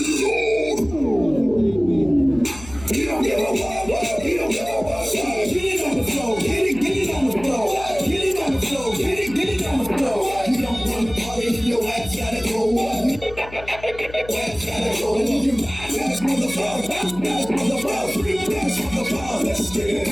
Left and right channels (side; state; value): left; noise; hum, 16 dB below the sound